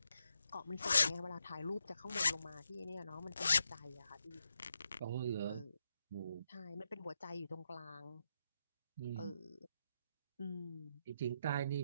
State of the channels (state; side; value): inverted; both; correlation -0.83